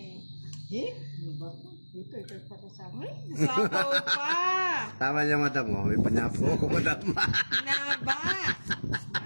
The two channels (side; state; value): both; inverted; correlation -1.00